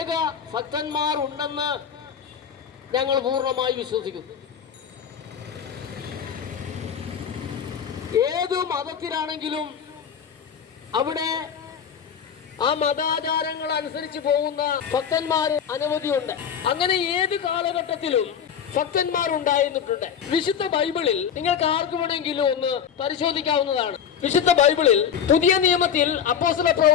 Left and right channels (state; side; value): quieter; right; 7.9 dB